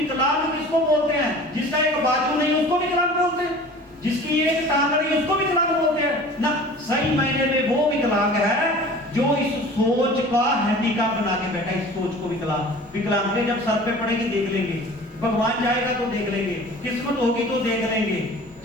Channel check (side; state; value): both; normal; correlation 0.43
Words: किसको बोलते हैं? जिसका एक बाजू नहीं उसको विकलांग बोलते हैं, जिसकी एक टांग नहीं उसको विकलांग बोलते हैं ना। सही मायने में वो विकलांग है जो इस सोच का हैंडीकैप बना के बैठा है। इस सोच को विकलांग है। जब सर पे पड़ेगी देख लेंगे, भगवान जाएगा तो देख लेंगे, किस्मत होगी तो देख लेंगे।